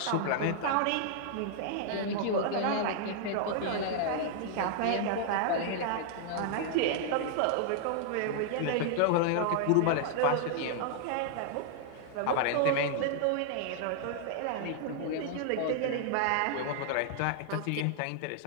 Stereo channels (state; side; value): different; both; correlation 0.00